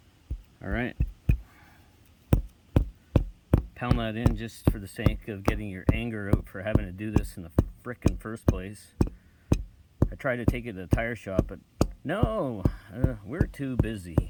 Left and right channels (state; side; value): identical; both; correlation 1.00